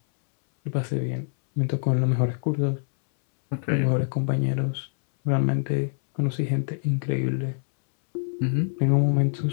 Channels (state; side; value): silent; right; 62 dB below the other